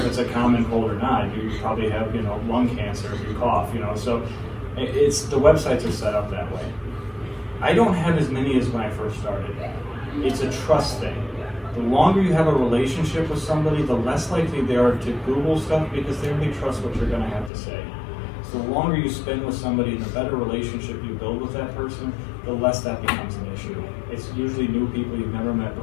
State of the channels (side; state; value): right; drops out; at 17.5 s